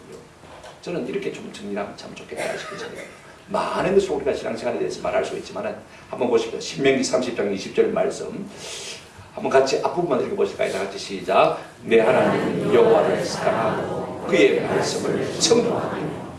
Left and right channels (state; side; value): identical; both; correlation 1.00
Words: 저는 이렇게 좀 정리하면 참 좋겠다 싶거든요. 많은 것을 우리가 신앙생활에 대해서 말할 수 있지만 한번 보십시오. 신명기 30장 20절 말씀 한번 같이 앞부분만 읽어보실까요? 다 같이 시작. 내 하나님 여호와를 사랑하고 그의 말씀을